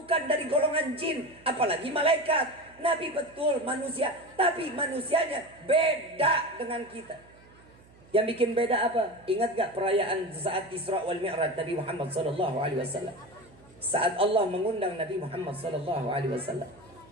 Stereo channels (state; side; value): noise; right; hum, 26 dB below the sound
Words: dari golongan jin, apalagi malaikat. Nabi betul manusia, tapi manusianya beda dengan kita. Yang bikin beda apa? Ingat gak perayaan saat Isra wal Mi'raj Nabi Muhammad sallallahu alaihi wasallam? Saat Allah mengundang Nabi Muhammad sallallahu alaihi wasallam,